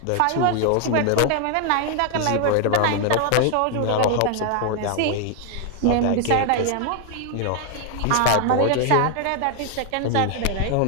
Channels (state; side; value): different; both; correlation 0.00